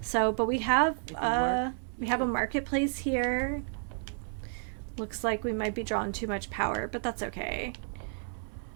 So, but we have a marketplace here. Looks like we might be drawing too much power, but that's okay.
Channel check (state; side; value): silent; left; 56 dB below the other